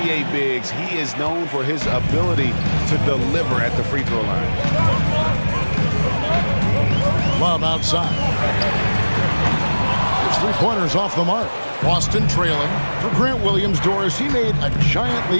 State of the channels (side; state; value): both; inverted; correlation -1.00